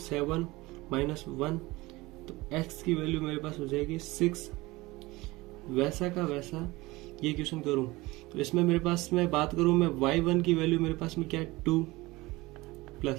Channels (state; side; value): quieter; left; 21.1 dB